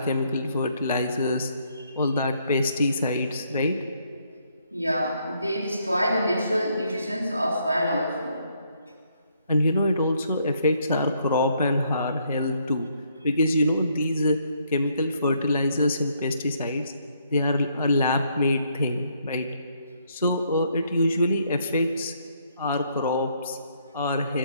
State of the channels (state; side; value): inverted; both; correlation -0.71